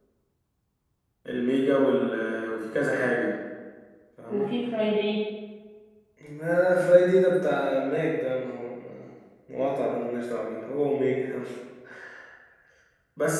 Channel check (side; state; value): both; identical; correlation 1.00